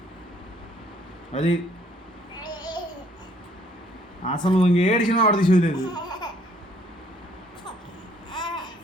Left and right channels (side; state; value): both; normal; correlation 0.63